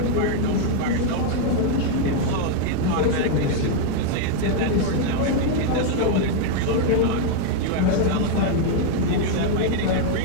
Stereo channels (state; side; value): different; both; correlation 0.00